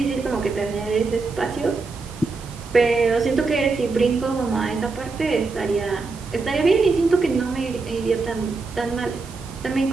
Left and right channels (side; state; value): left; quieter; 4.0 dB